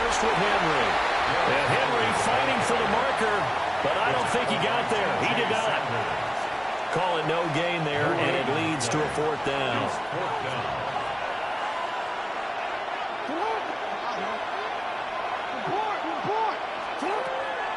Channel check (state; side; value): identical; both; correlation 1.00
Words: with Henry. And Henry fighting for the marker, but I don't think he got there. He did not. Call it no gain there, and it leads to a 4th down.